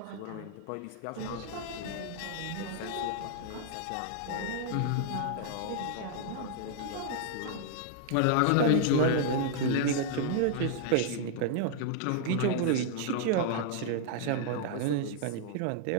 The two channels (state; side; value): different; both; correlation -0.01